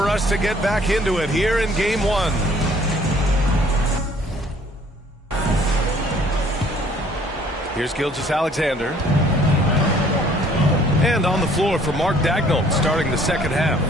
us to get back into it here in Game 1. Here's Gilgeous-Alexander. And on the floor for Mark Dagnall, starting the second half.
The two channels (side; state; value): both; normal; correlation 0.58